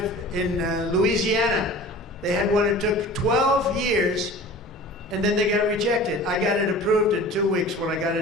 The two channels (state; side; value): normal; both; correlation 0.41